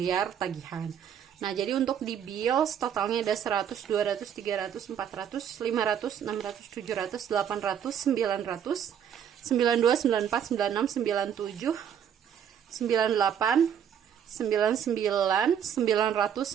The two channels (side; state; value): left; quieter; 8.7 dB